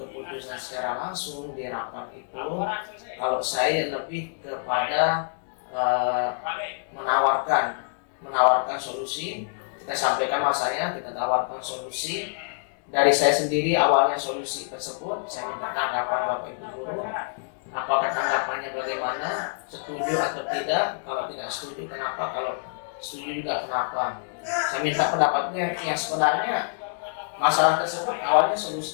secara langsung di rapat itu, kalau saya lebih kepada menawarkan solusi. Kita sampaikan masanya, kita tawarkan solusi dari saya sendiri. Awalnya solusi tersebut saya minta tanggapan Bapak Ibu Guru, apakah tanggapannya bagaimana, setuju atau tidak, kalau tidak setuju kenapa, kalau setuju juga kenapa. Saya minta pendapatnya. Yang sebenarnya masalah tersebut awalnya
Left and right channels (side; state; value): right; silent; digital silence